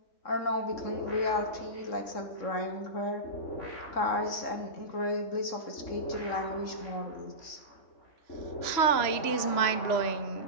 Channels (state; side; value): late; right; 3.0 ms